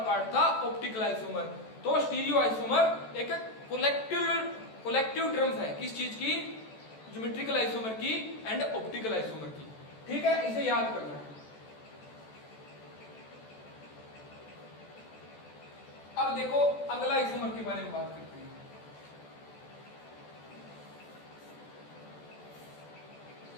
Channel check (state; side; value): late; right; 14 ms